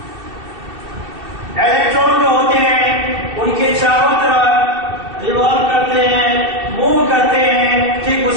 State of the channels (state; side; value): late; left; 2.7 ms